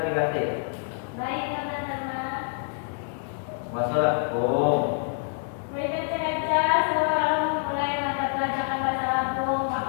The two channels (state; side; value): silent; right; 60 dB below the other